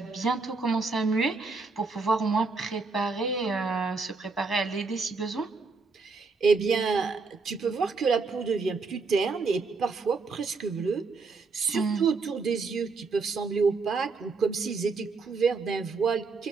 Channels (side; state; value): left; quieter; 4.3 dB